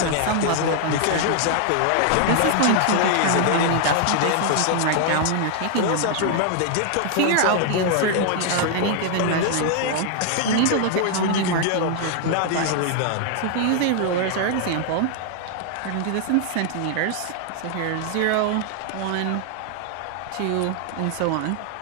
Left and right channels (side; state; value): both; different; correlation 0.00